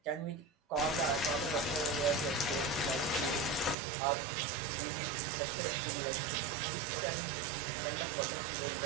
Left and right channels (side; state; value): left; drops out; at 3.8 s